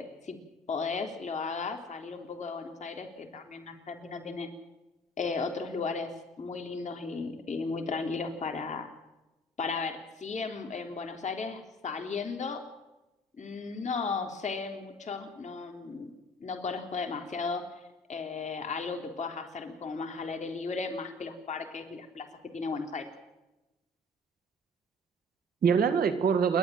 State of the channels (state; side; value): normal; both; correlation 0.49